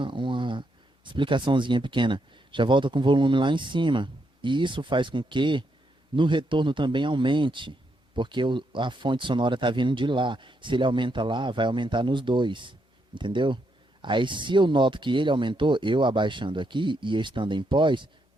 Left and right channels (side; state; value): both; normal; correlation 0.79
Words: explicaçãozinha pequena. Já volta com o volume lá em cima. E isso faz com que no retorno também aumente. Porque a fonte sonora está vindo de lá. Se ele aumenta lá, vai aumentar nos dois. Entendeu? Aí se eu noto que ele aumentou, eu abaixando aqui e estando em pós,